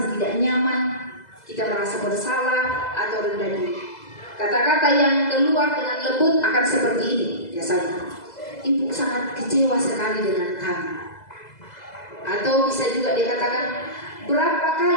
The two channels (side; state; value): right; late; 2.0 ms